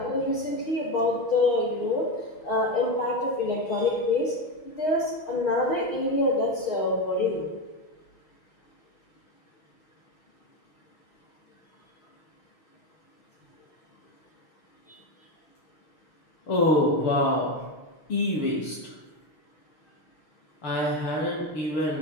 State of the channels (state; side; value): late; right; 6.4 ms